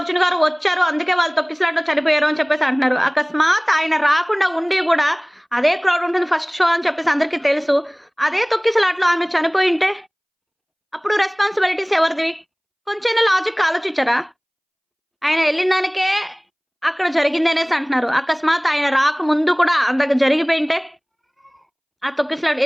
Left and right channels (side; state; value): both; identical; correlation 1.00